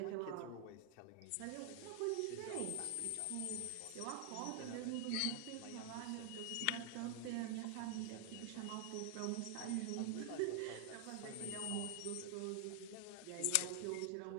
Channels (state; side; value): different; both; correlation 0.00